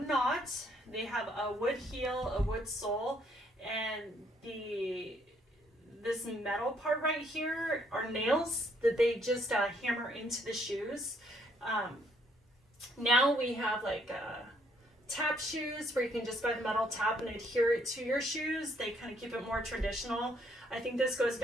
They have a wood heel, a wood sole, and this metal part right here are nails that they just hammer into the shoes. Now we have like tap shoes where you can just buy the metal tap and adhere it to your shoes. They kind of keep it more traditional. I think this goes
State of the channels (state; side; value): normal; both; correlation 0.68